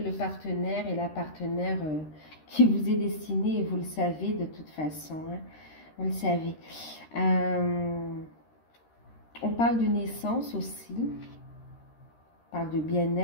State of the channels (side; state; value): right; late; 13 ms